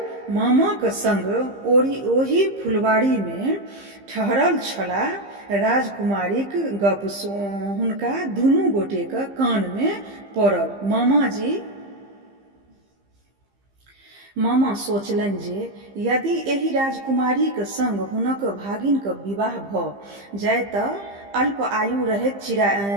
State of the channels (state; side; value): late; left; 15 ms